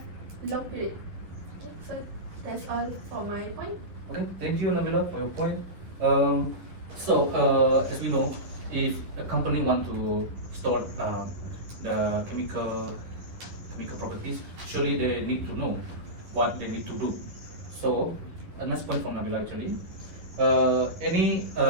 long period. Okay, so that's all for my point. Okay, thank you, Nabila, for your point. As we know, if a company want to store the chemical properties, surely they need to know what they need to do. So, a nice point from Nabila actually. Any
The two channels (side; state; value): left; late; 11 ms